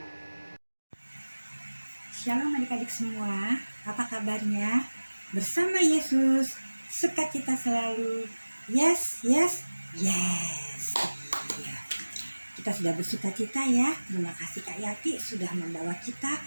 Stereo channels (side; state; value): both; inverted; correlation -1.00